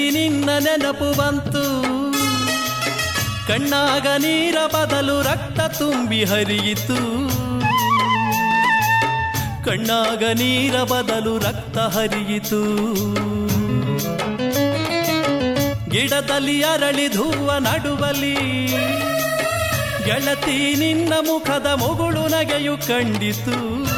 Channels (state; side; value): identical; both; correlation 1.00